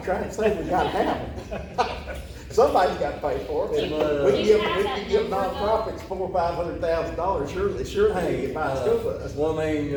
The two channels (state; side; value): identical; both; correlation 1.00